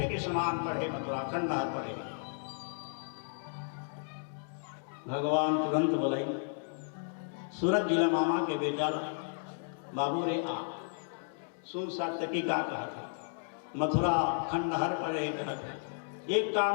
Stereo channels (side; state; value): right; silent; digital silence